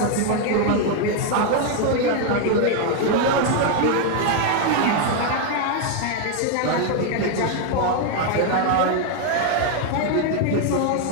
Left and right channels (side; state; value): both; different; correlation 0.01